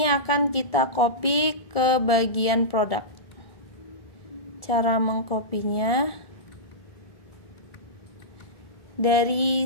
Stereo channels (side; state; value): right; late; 1.7 ms